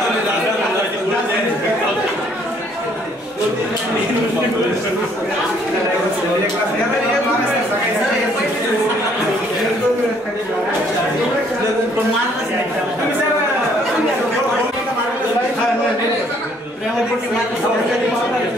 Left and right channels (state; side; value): normal; both; correlation 0.64